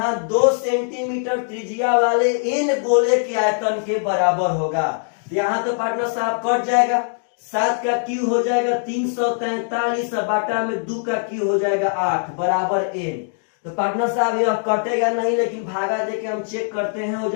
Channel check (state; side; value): silent; right; digital silence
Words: 2 सेंटीमीटर त्रिज्या वाले n गोले के आयतन के बराबर होगा। यहाँ तो पार्टनर साहब कट जाएगा, 7 का क्यू हो जाएगा 343 बाटा में 2 का क्यू हो जाएगा 8 बराबर n। तो पार्टनर साहब यह कटेगा नहीं, लेकिन भागा देके हम चेक करते हैं, हो